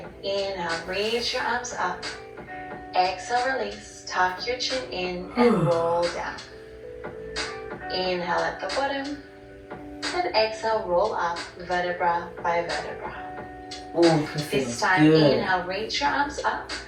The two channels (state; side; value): identical; both; correlation 1.00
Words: inhale, reach your arms up. Exhale, release, tuck your chin in and roll down. Inhale at the bottom, then exhale, roll up vertebra by vertebra. This time, inhale, reach your arms up.